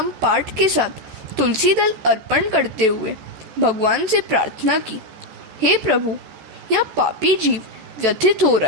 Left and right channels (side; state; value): left; late; 14 ms